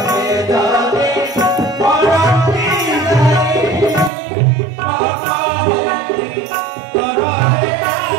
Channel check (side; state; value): left; drops out; at 4.1 s